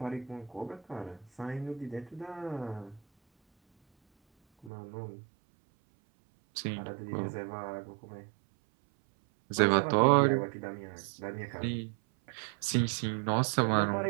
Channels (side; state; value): left; drops out; at 4.7 s